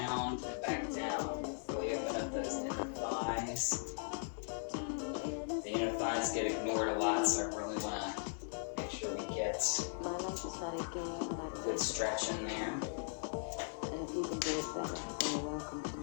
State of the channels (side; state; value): right; silent; digital silence